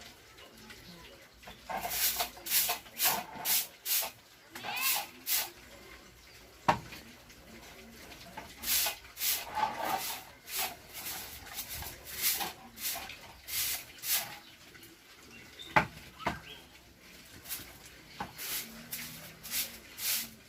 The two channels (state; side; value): identical; both; correlation 1.00